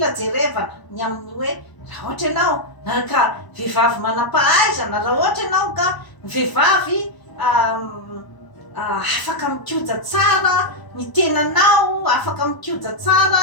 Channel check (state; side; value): late; right; 1.0 ms